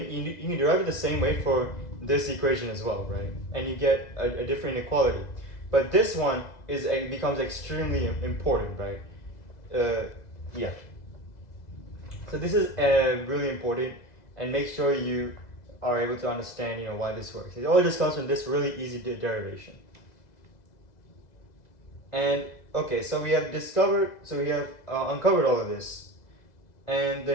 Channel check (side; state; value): right; late; 2.0 ms